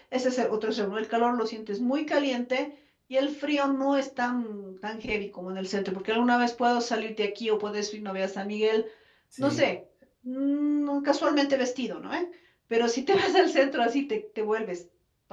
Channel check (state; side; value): identical; both; correlation 1.00